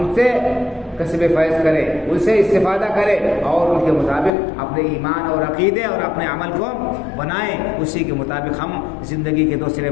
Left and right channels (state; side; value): drops out; right; at 4.3 s